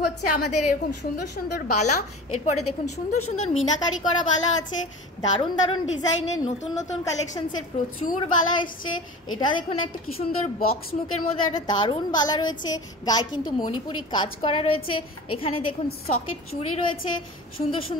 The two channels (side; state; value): both; normal; correlation 0.36